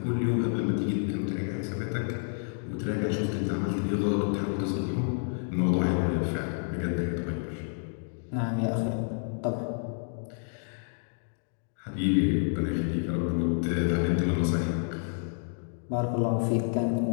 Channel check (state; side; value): silent; right; digital silence